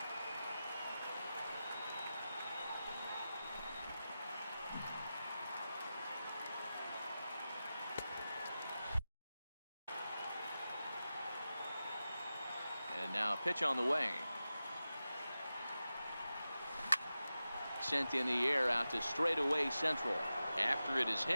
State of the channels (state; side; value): inverted; both; correlation -0.93